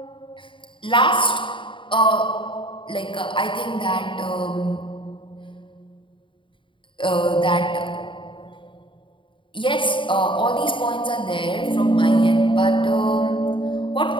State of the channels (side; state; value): right; late; 0.24 ms